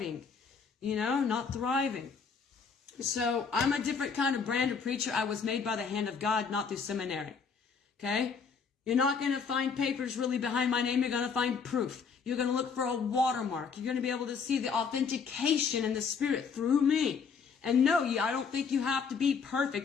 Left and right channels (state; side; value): quieter; right; 5.8 dB